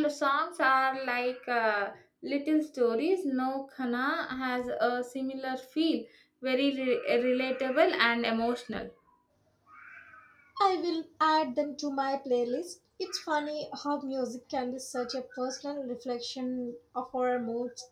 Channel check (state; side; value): identical; both; correlation 1.00